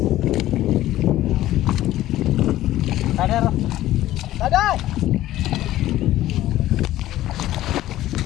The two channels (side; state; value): right; quieter; 14.5 dB